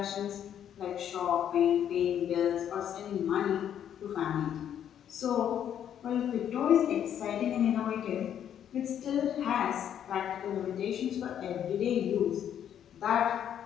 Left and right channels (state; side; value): quieter; right; 9.6 dB